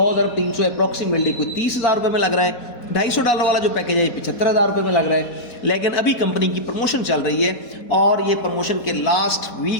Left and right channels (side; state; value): right; late; 4.1 ms